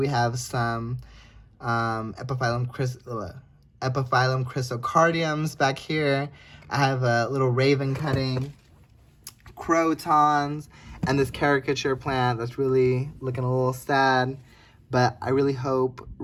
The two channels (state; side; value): identical; both; correlation 1.00